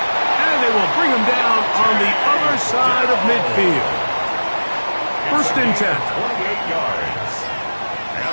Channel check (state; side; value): inverted; both; correlation -1.00